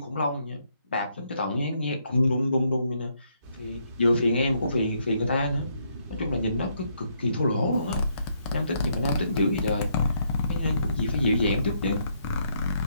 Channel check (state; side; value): inverted; both; correlation -0.74